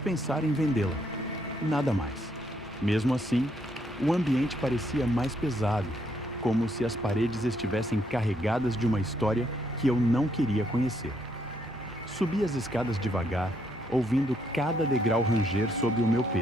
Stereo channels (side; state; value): both; normal; correlation 0.73